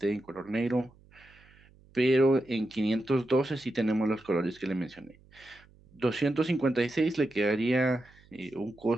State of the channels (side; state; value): right; noise; hum, 27 dB below the sound